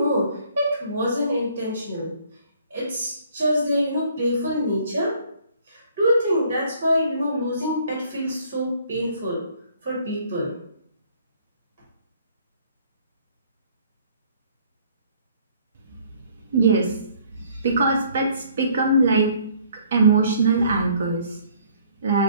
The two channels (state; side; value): inverted; both; correlation -0.60